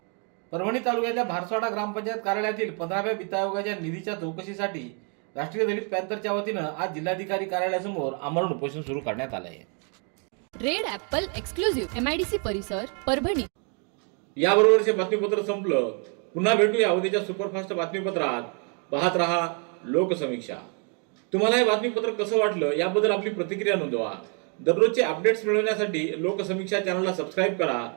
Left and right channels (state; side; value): quieter; left; 38.9 dB